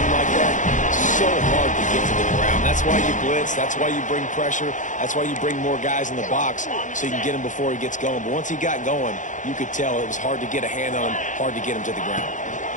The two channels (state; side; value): late; right; 0.37 ms